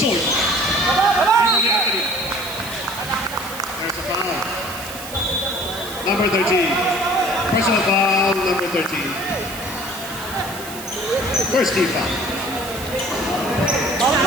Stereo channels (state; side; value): noise; right; hiss, 12 dB below the sound